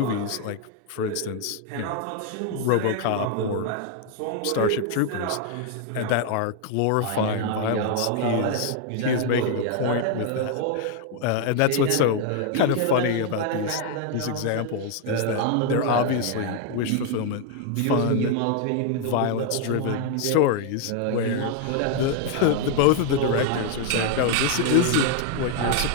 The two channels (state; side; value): different; both; correlation 0.00